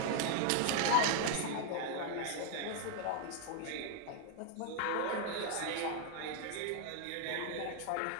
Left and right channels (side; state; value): both; different; correlation 0.00